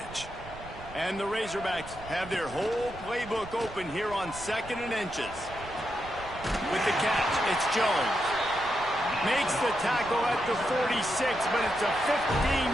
And the Razorbacks have their whole playbook open here on 2nd and inches. With the catch, it's Jones. Makes the tackle at the 46, but it's a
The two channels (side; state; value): right; noise; rumble, 16 dB below the sound